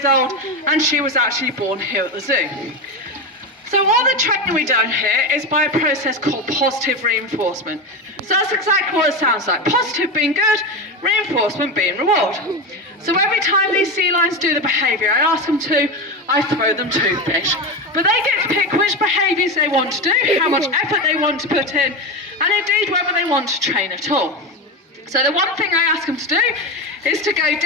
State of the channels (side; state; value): both; normal; correlation 0.18